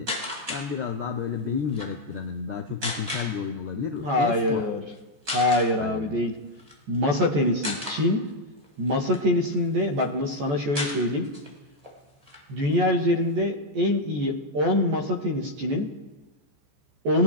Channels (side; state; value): left; late; 14 ms